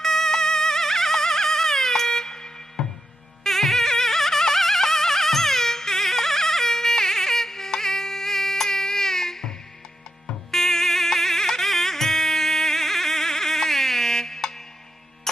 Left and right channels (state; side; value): normal; both; correlation 0.85